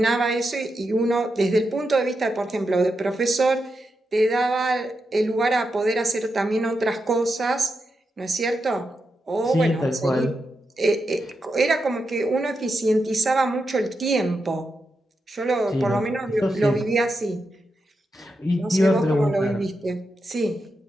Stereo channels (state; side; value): normal; both; correlation 0.86